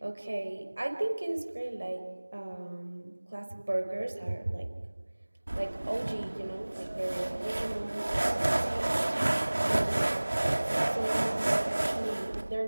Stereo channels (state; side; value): inverted; both; correlation -1.00